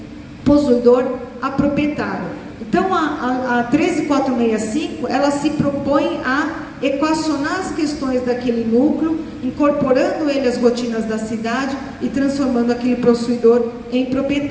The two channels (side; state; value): both; identical; correlation 1.00